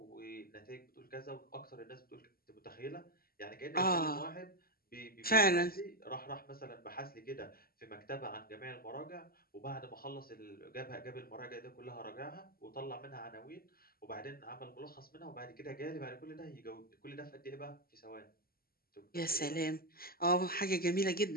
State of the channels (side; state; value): right; late; 0.43 ms